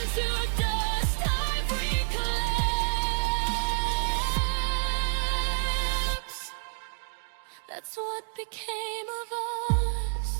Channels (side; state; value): left; silent; digital silence